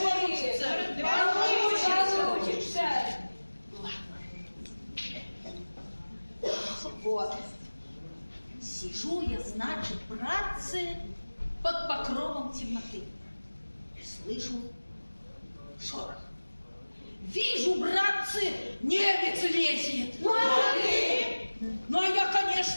получится. Получится. Вот. Сижу я, значит, братцы, под покровом темноты. Слышу шорох. Вижу, братцы, немец лезет. Ну, а я,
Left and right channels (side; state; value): both; inverted; correlation -1.00